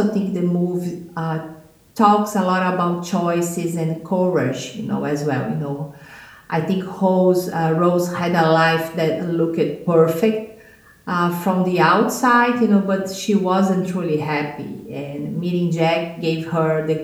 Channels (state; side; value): identical; both; correlation 1.00